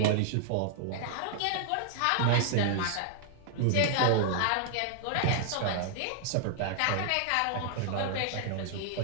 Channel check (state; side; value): different; both; correlation 0.00